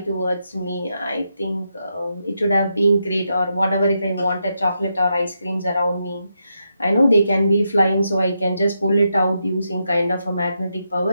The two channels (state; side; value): inverted; both; correlation -0.83